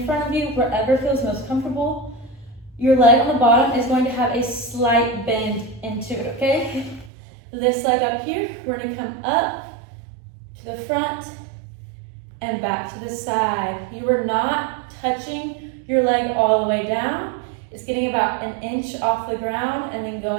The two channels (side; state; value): left; drops out; at 7.1 s